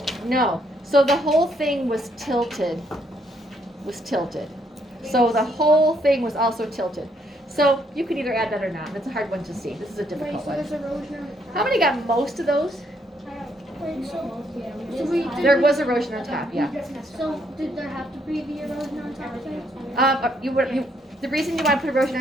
No. So the whole thing was tilted. So the whole thing was also tilted. So you can either add that or not. That's a hard one to see. This is a Wait, difficult so one. there's erosion on the How many got most of those? Wait, so There was erosion on top, yeah. So did there have to be the erosion on top of it? The reason you want to put erosion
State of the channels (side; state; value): both; normal; correlation 0.72